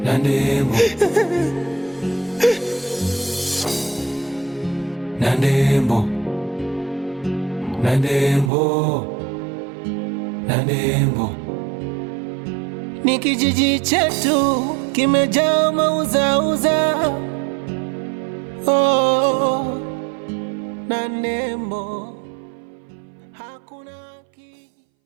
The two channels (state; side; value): drops out; left; at 8.5 s